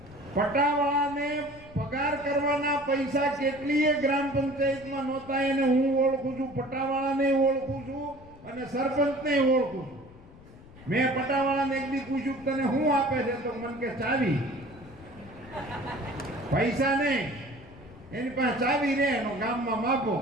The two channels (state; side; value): noise; left; rumble, 21 dB below the sound